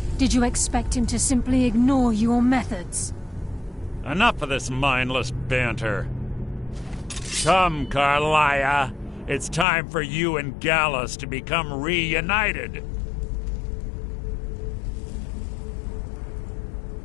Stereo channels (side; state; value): right; drops out; at 9.7 s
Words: Did you expect him to simply ignore your methods? Enough of this mindless banter. Come, Carlia. It's time for you and Gallus to become reunited.